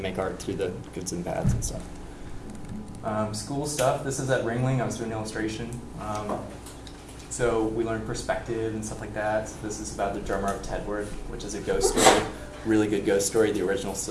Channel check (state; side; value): identical; both; correlation 1.00